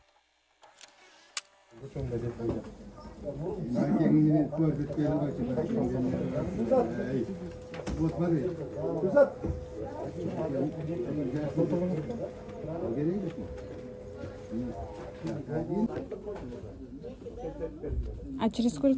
Вот смотри. А через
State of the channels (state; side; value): identical; both; correlation 1.00